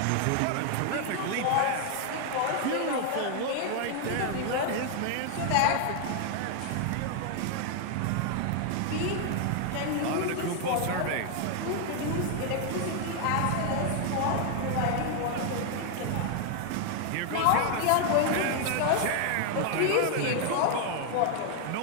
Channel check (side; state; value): both; different; correlation 0.00